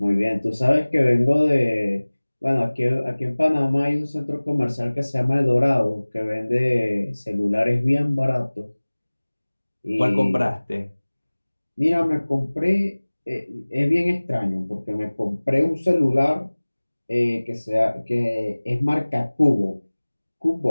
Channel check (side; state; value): both; inverted; correlation -1.00